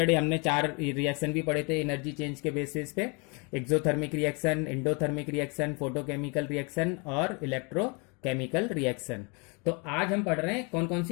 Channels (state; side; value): quieter; right; 32.2 dB